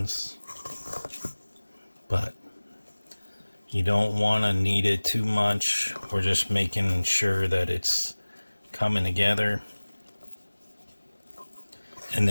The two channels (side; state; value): both; inverted; correlation -1.00